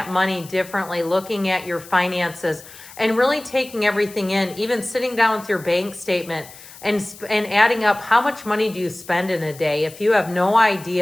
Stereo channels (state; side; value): noise; left; hiss, 19 dB below the sound